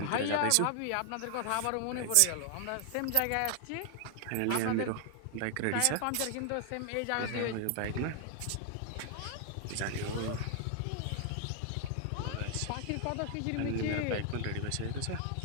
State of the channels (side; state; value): both; different; correlation 0.00